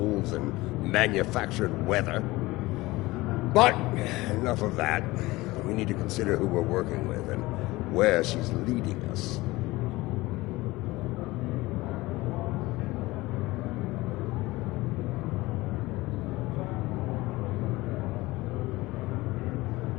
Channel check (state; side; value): quieter; right; 20.1 dB